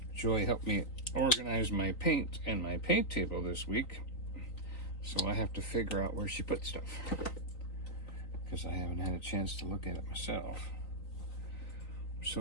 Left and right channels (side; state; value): right; late; 3.9 ms